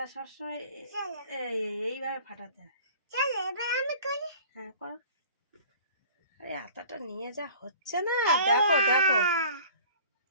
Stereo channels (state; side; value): inverted; both; correlation -0.46